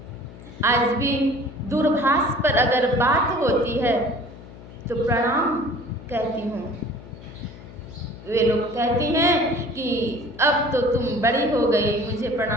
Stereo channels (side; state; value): left; noise; hum, 17 dB below the sound